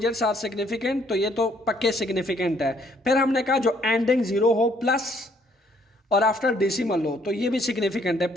are significant, तो ये तो पक्के सिग्निफिकेंट है। फिर हमने कहा जो एंडिंग 0 हो प्लस और आफ्टर डेसिमल हो तो ये भी सिग्निफिकेंट है।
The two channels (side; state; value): both; normal; correlation 0.65